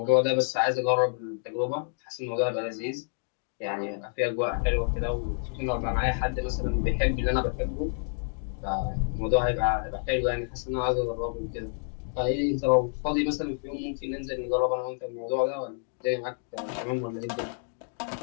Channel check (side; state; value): right; silent; 59 dB below the other